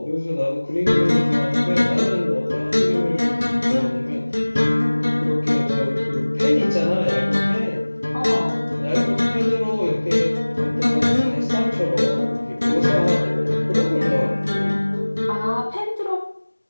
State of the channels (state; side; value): inverted; both; correlation -1.00